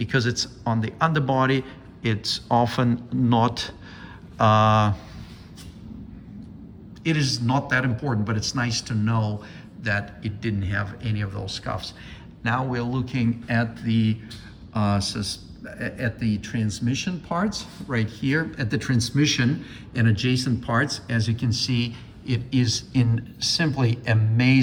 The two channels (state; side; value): identical; both; correlation 1.00